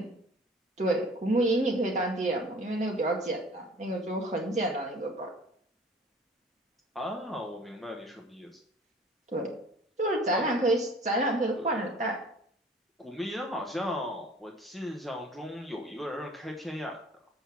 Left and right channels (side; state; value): both; normal; correlation 0.48